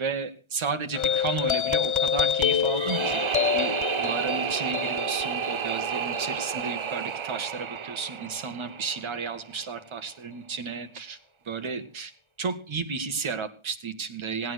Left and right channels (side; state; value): left; late; 1.3 ms